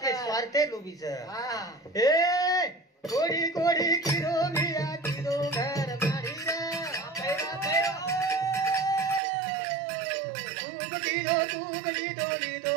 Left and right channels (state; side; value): drops out; left; at 9.2 s